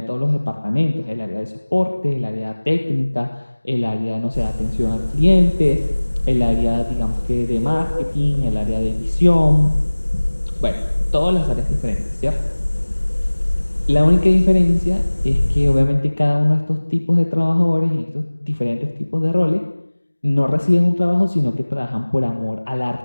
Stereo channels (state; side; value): inverted; both; correlation -1.00